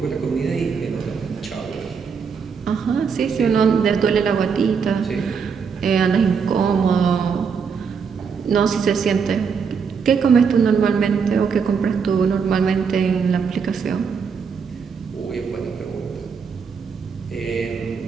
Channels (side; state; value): left; quieter; 6.1 dB